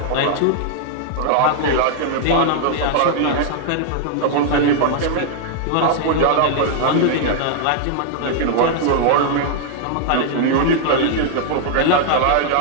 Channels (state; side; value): different; both; correlation -0.01